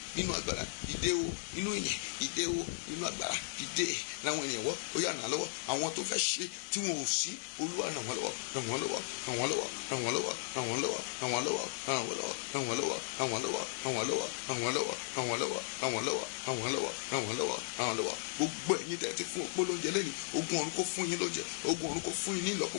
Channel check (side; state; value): right; silent; 54 dB below the other